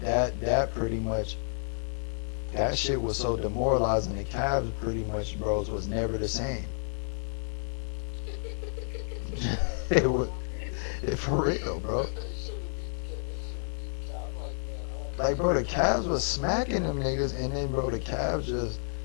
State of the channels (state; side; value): silent; right; 58 dB below the other